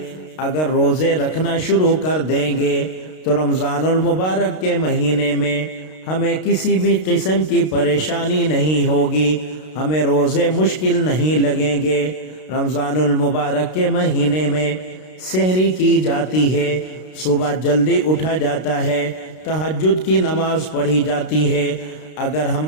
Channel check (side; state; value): right; late; 32 ms